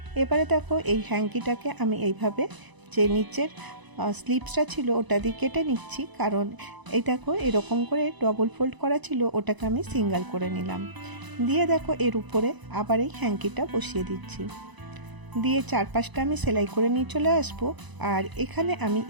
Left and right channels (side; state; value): left; late; 1.0 ms